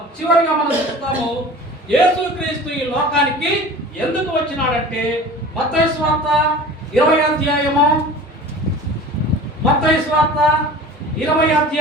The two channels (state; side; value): normal; both; correlation 0.40